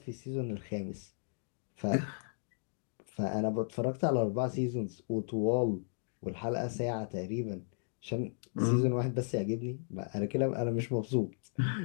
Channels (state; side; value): silent; right; digital silence